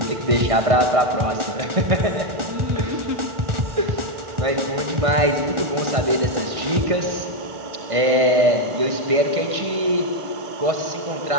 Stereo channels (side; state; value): left; late; 1.5 ms